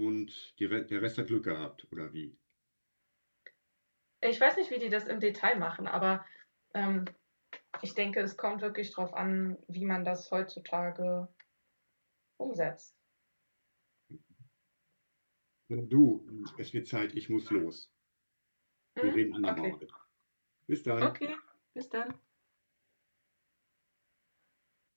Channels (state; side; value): inverted; both; correlation -1.00